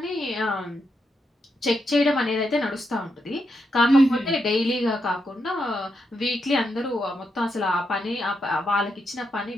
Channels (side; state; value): both; normal; correlation 0.83